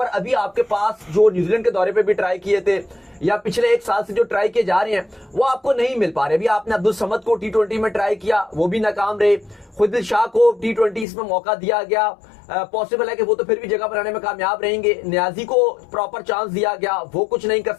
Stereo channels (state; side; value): drops out; right; at 11.1 s